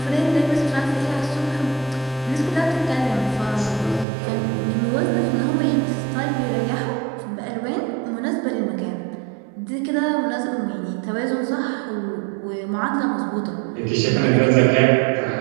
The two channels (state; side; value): drops out; left; at 4.0 s